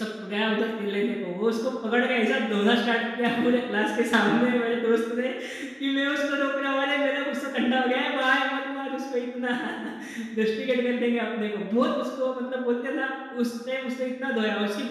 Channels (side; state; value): both; identical; correlation 1.00